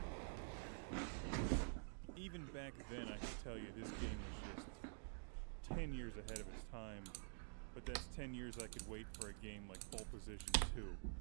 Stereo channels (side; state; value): left; silent; digital silence